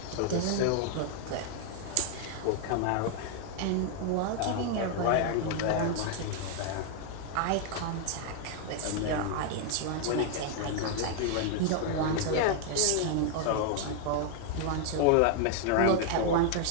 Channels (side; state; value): both; different; correlation 0.00